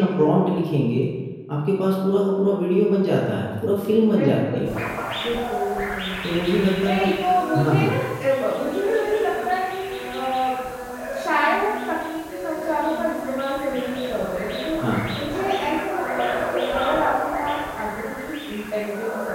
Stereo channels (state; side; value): identical; both; correlation 1.00